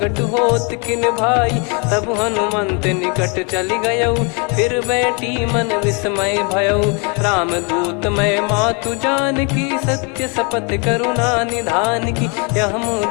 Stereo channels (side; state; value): right; quieter; 34.1 dB